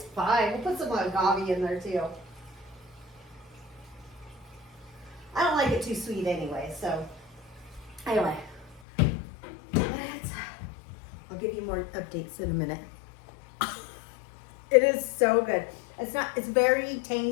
fine. We'll put some agave in there too. I don't like it too sweet anyway, so anyway. I'll give you more updates in a minute. It is so good. It's very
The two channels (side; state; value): right; drops out; at 8.8 s